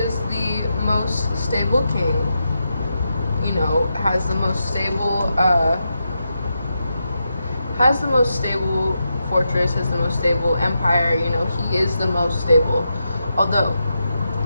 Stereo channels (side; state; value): both; inverted; correlation -0.86